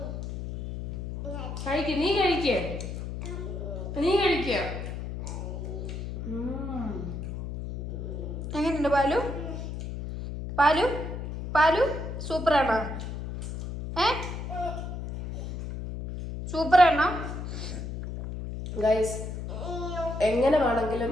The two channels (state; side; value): noise; left; hum, 6 dB below the sound